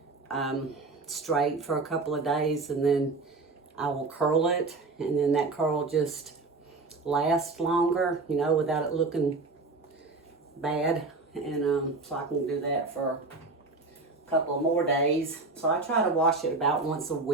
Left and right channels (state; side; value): quieter; left; 3.6 dB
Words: straight for a couple of days, and then I will curl it, and then that curl just lasts longer, you know, without it looking bad. And so I can do that for a couple of more days. So I try to wash it about once a